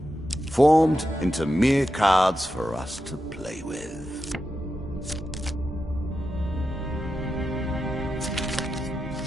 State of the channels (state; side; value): normal; both; correlation 0.89